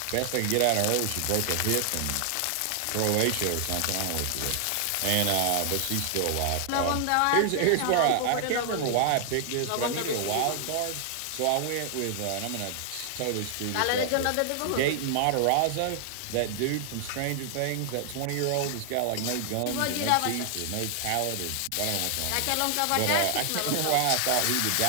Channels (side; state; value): both; different; correlation 0.00